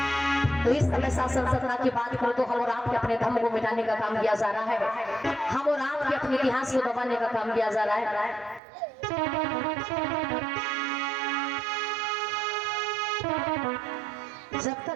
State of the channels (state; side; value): drops out; left; at 8.6 s